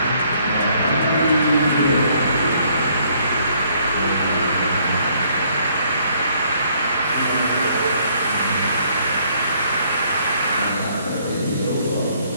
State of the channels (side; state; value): both; inverted; correlation -0.66